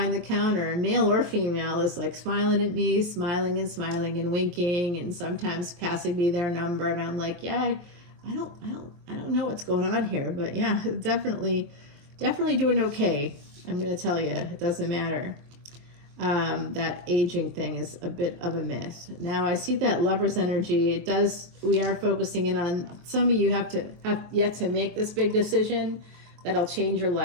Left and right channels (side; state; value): left; late; 23 ms